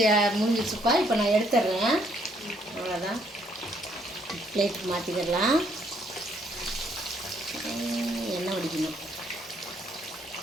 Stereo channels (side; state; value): both; normal; correlation 0.68